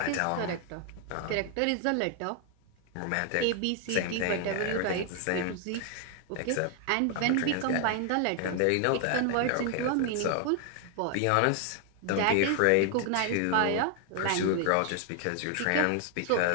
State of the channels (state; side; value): different; both; correlation 0.00